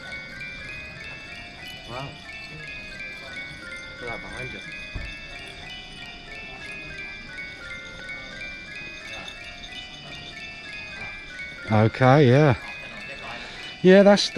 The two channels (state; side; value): identical; both; correlation 1.00